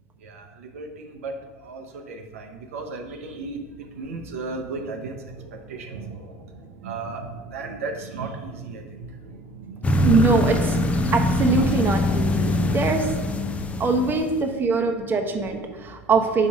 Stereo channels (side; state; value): both; normal; correlation 0.52